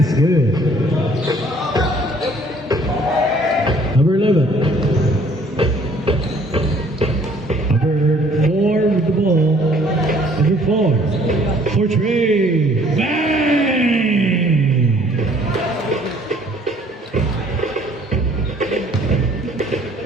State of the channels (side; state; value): both; normal; correlation 0.58